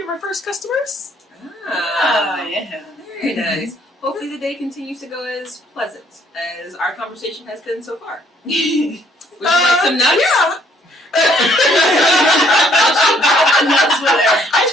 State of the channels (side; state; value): both; normal; correlation 0.64